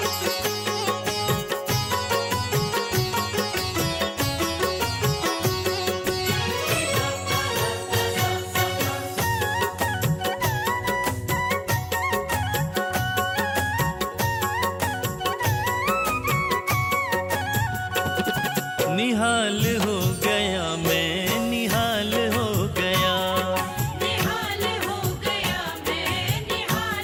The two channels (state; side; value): identical; both; correlation 1.00